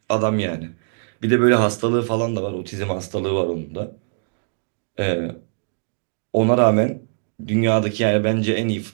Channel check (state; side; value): silent; left; digital silence